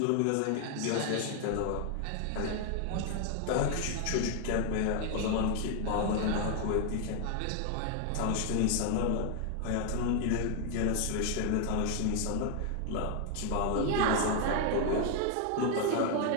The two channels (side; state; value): both; different; correlation 0.00